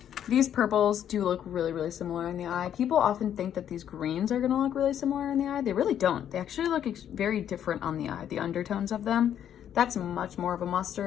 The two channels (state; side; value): quieter; right; 9.9 dB